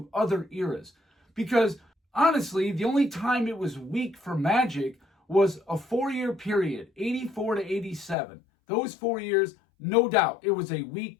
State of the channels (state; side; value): drops out; right; at 8.2 s